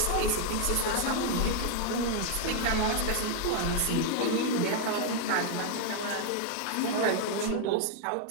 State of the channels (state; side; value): different; both; correlation 0.00